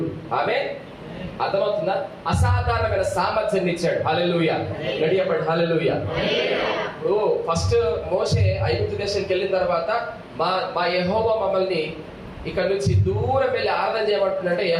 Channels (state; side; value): identical; both; correlation 1.00